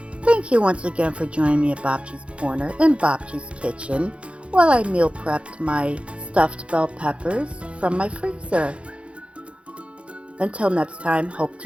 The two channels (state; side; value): late; left; 0.060 ms